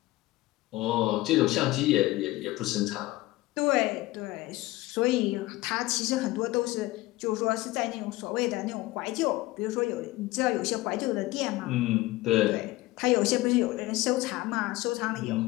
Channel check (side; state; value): right; quieter; 18.9 dB